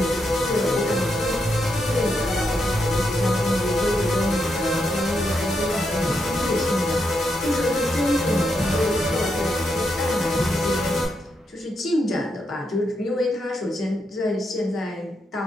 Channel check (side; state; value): both; normal; correlation 0.82